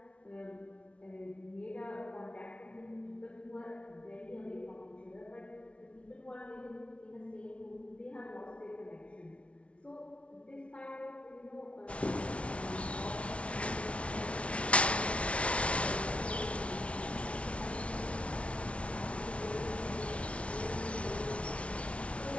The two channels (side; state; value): right; late; 0.062 ms